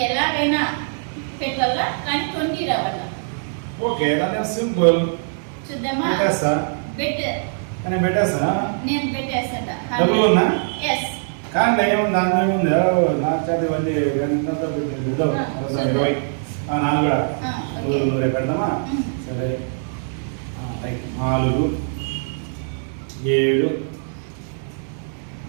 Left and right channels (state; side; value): silent; left; digital silence